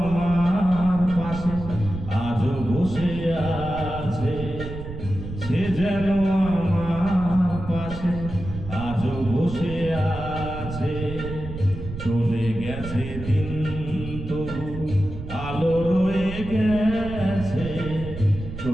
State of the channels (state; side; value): noise; right; rumble, 9 dB below the sound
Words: পাশে আজও বসে আছে, সে যেন আমার পাশে আজও বসে আছে। চলে গেছে দিন তবু আলো রয়ে গেছে,